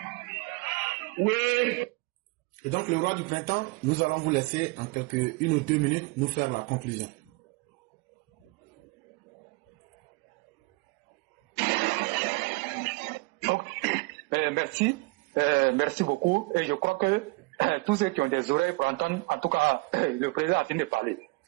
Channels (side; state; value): left; quieter; 25.7 dB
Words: Oui. Et donc, le roi du printemps, nous allons vous laisser en une ou deux minutes nous faire la conclusion. Merci beaucoup. Et je crois que tous ceux qui ont des oreilles pour entendre, en tout cas, le président a fini de parler.